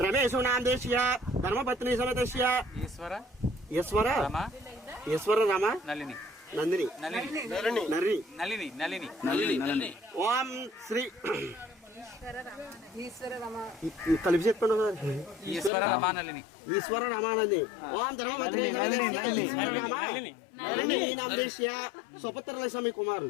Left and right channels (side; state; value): right; drops out; at 15.7 s